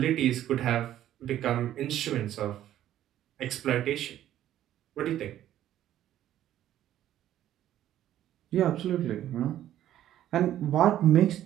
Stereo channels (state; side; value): quieter; left; 12.2 dB